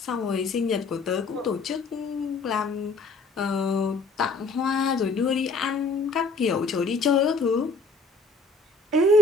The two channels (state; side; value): quieter; right; 3.8 dB